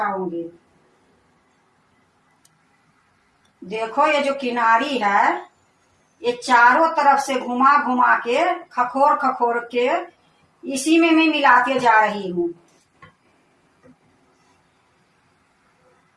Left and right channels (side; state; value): both; identical; correlation 1.00